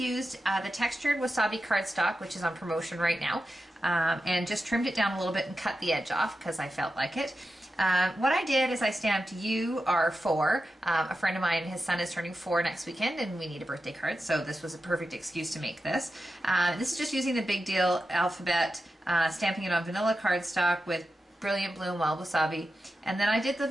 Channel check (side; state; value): both; normal; correlation 0.91